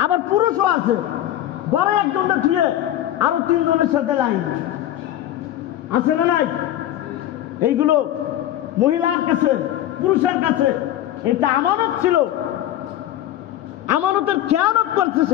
আবার পুরুষও আছে, ঘরে একজনটা ছুঁয়ে আরো 3 জনের সাথে লাইন আছে না নাই? এইগুলো মহিলার কাছে, পুরুষের কাছে এটা আমানত ছিল, আমানতের খেয়ানত করছে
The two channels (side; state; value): right; quieter; 12.8 dB